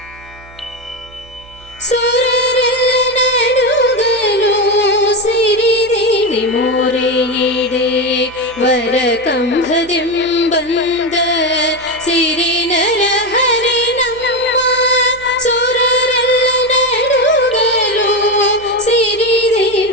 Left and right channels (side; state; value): right; noise; hum, 22 dB below the sound